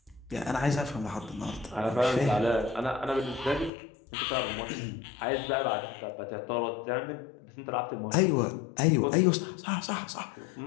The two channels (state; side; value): drops out; right; at 3.7 s